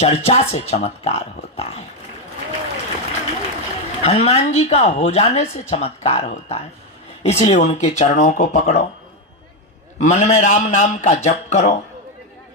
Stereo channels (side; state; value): both; normal; correlation 0.07